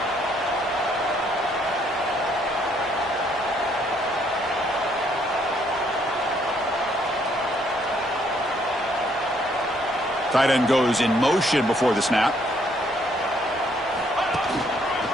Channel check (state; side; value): normal; both; correlation 0.68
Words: Tight end goes in motion before the snap.